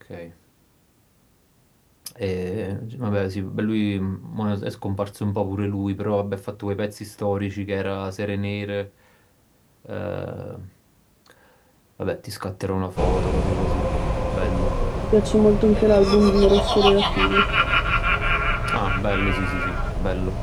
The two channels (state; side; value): identical; both; correlation 1.00